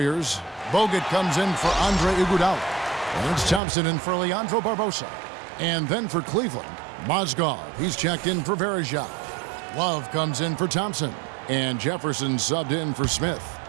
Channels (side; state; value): left; drops out; at 3.6 s